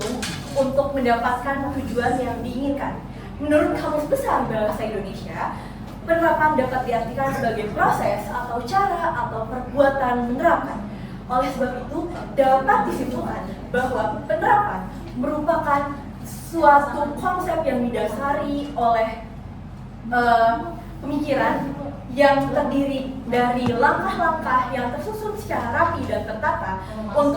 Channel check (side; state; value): both; identical; correlation 1.00